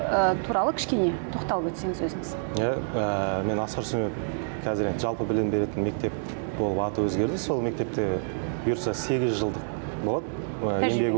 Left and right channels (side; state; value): left; silent; digital silence